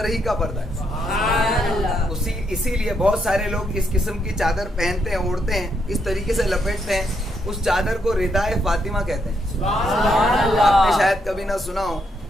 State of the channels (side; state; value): both; normal; correlation 0.77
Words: ہی کا پردہ ہے. اسی لیے بہت سارے لوگ اس قسم کی چادر پہنتے ہیں, اوڑھتے ہیں, اس طریقے سے لپیٹتے ہیں, اس چادر کو ردائے فاطمہ کہتے ہیں. آپ نے شاید کبھی نہ سنا ہو,